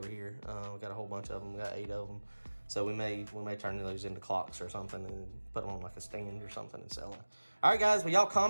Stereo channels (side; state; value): both; inverted; correlation -1.00